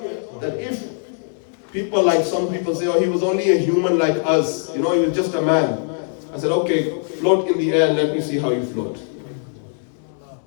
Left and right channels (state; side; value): silent; right; 60 dB below the other